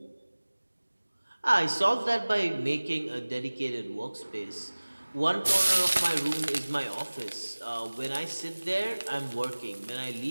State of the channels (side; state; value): both; inverted; correlation -1.00